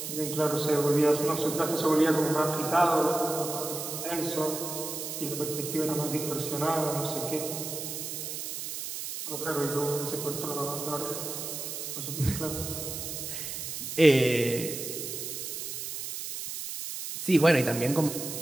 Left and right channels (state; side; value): noise; right; hiss, 6 dB below the sound